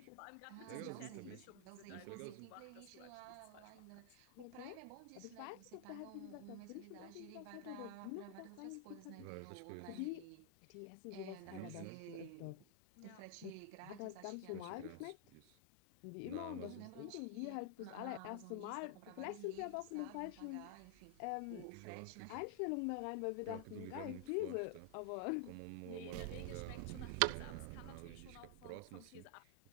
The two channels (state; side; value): different; both; correlation 0.00